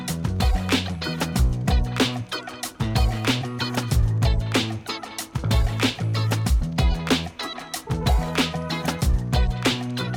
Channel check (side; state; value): both; identical; correlation 1.00